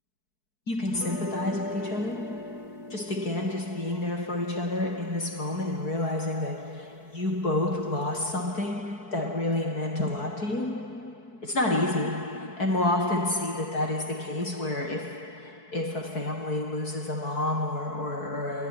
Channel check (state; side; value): late; right; 4.6 ms